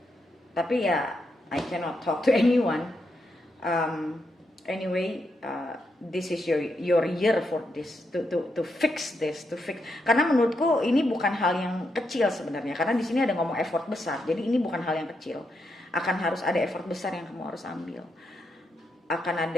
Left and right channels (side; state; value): both; normal; correlation 0.81